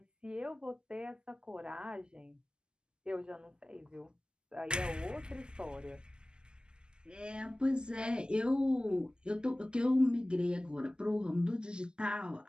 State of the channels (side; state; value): left; late; 0.047 ms